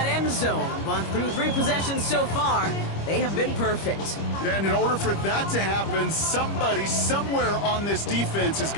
end zone. But through 3 possessions so far, they have been perfect. And in order for that to happen, somebody somewhere on this defense has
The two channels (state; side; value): late; right; 25 ms